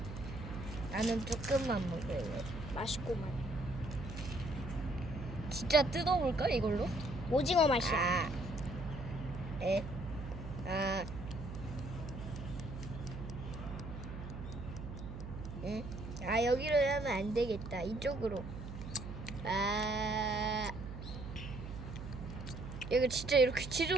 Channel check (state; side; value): noise; right; hum, 9 dB below the sound